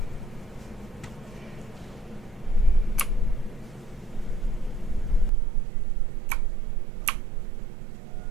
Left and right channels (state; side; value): drops out; left; at 5.3 s